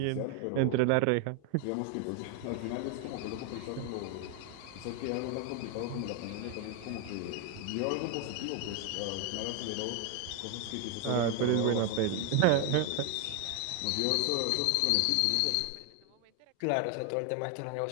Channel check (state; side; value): different; both; correlation 0.01